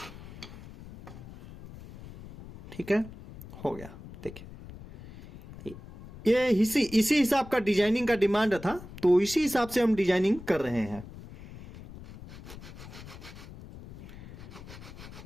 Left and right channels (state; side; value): noise; left; rumble, 15 dB below the sound